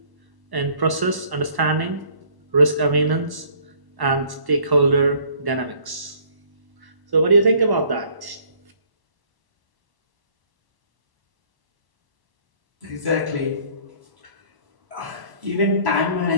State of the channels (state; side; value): late; left; 1.1 ms